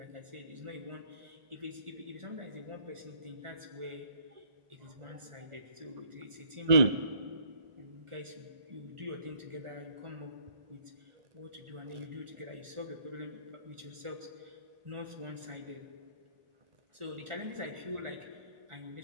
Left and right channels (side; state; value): left; late; 1.4 ms